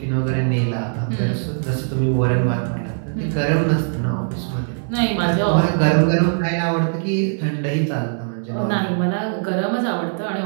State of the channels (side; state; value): left; silent; 65 dB below the other